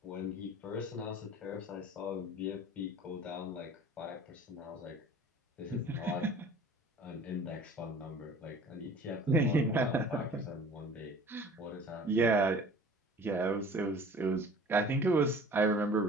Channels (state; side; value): normal; both; correlation 0.46